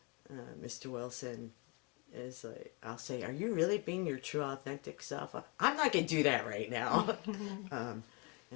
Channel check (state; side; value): quieter; right; 31.3 dB